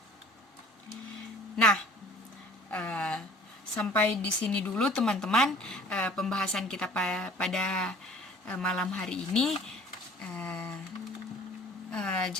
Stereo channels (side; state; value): both; normal; correlation 0.50